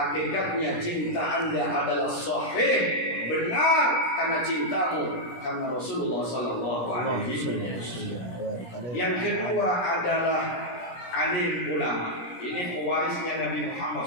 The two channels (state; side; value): late; right; 17 ms